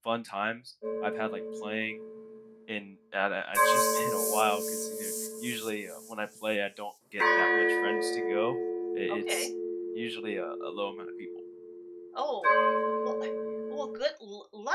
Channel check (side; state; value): both; identical; correlation 1.00